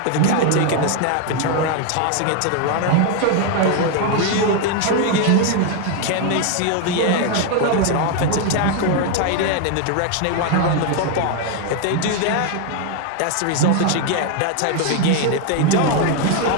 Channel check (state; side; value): different; both; correlation 0.01